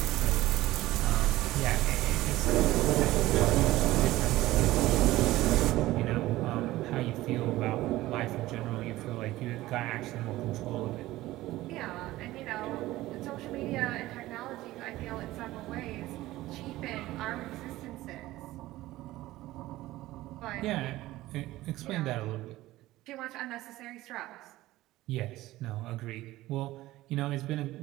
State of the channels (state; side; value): quieter; left; 16.8 dB